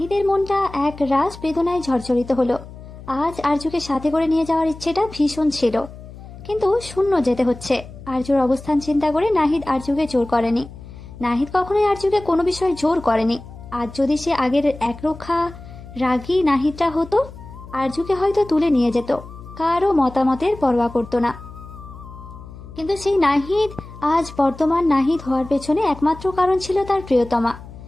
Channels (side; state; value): left; noise; hum, 16 dB below the sound